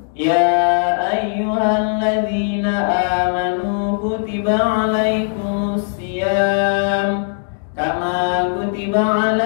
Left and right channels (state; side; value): silent; right; digital silence